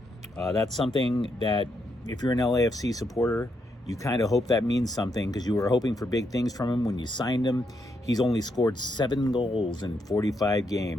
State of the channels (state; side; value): normal; both; correlation 0.79